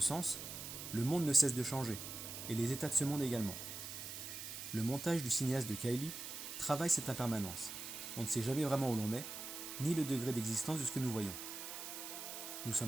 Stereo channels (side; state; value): right; noise; hiss, 8 dB below the sound